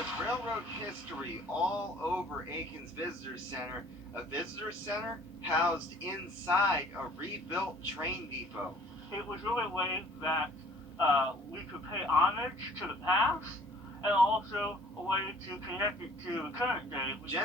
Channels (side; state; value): both; normal; correlation 0.54